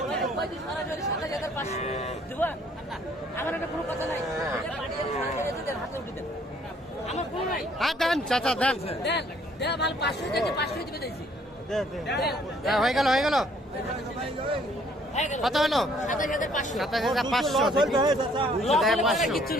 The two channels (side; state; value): both; normal; correlation 0.62